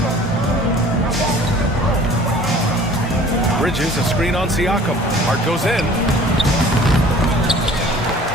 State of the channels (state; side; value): normal; both; correlation 0.49